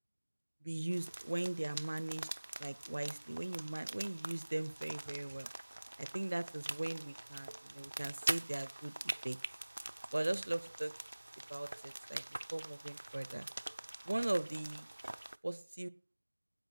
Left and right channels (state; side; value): inverted; both; correlation -1.00